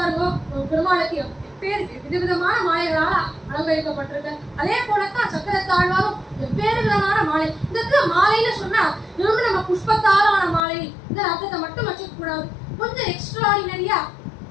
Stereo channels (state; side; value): drops out; right; at 10.6 s